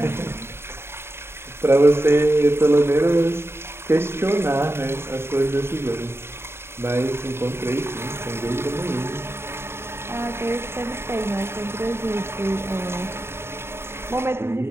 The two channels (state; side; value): late; left; 0.12 ms